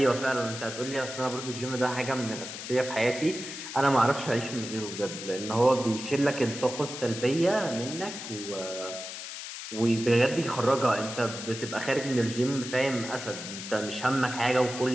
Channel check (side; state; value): left; noise; hiss, 9 dB below the sound